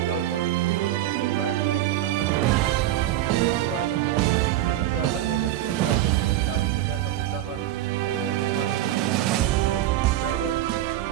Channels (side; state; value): left; quieter; 13.3 dB